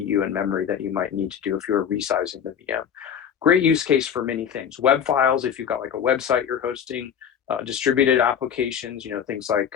and memory that you might need to do if you're resizing the VM. Great use case for many things. Web files, if you've got like a website you're hosting, distributed applications, things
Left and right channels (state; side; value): quieter; right; 8.2 dB